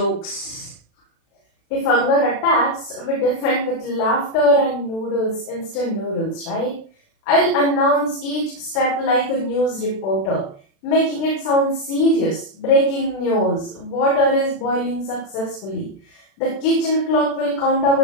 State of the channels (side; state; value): right; late; 36 ms